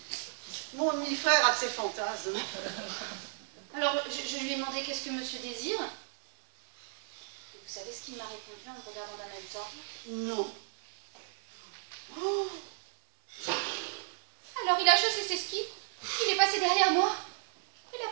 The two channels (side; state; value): left; silent; 55 dB below the other